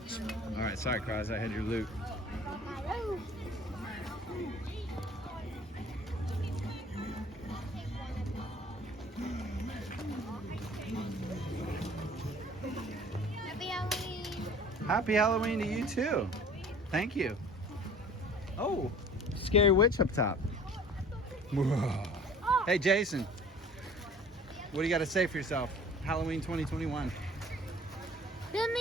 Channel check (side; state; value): both; normal; correlation 0.48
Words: All right, sorry, Cross. I had your loot. Happy Halloween. Happy Halloween to you too. Thank you. Oh, scary witch up top. Hey, Jason. What do you got to say for yourself? Halloween 2021. Give